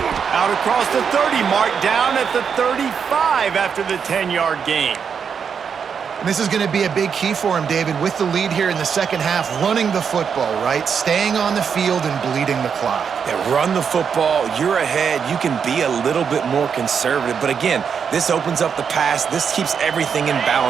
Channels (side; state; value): left; quieter; 6.8 dB